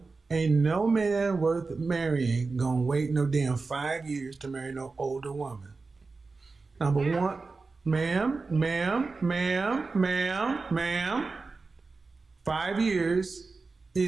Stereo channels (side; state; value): left; quieter; 4.0 dB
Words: ain't no man worth marrying gonna wait no damn 5 years to marry no older woman. Number one, ma'am. 5 years